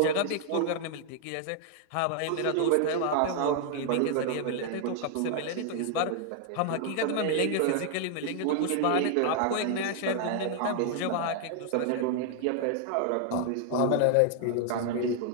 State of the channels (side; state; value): both; different; correlation 0.00